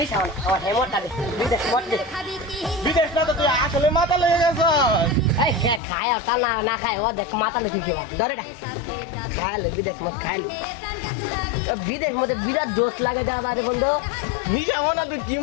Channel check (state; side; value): drops out; right; at 5.8 s